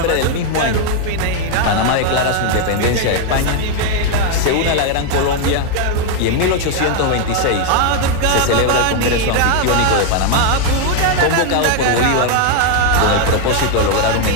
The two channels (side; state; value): both; different; correlation 0.00